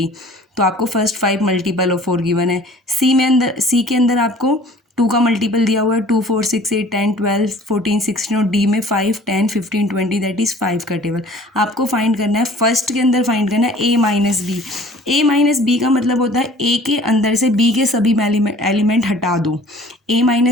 तो आपको फर्स्ट 5 मल्टीपल ऑफ 4 गिवन है. सी के अंदर आपको 2 का मल्टीपल दिया हुआ है 2, 4, 6, 8, 10, 12, 14, 16 और डी में 5, 10, 15, 20 दैट इज़ 5 का टेबल आपको फाइंड करना है. फर्स्ट के अंदर फाइंड करना है ए माइनस बी. ए माइनस बी का मतलब होता है ए के अंदर से बी के सभी एलिमेंट हटा दो. ए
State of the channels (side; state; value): both; normal; correlation 0.49